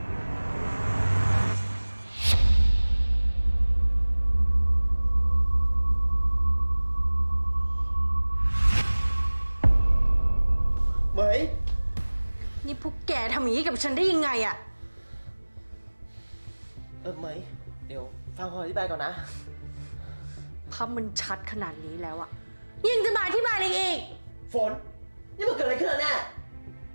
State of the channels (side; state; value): both; inverted; correlation -1.00